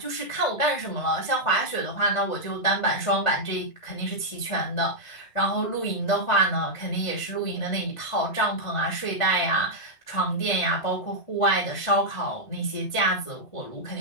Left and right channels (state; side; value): late; right; 1.5 ms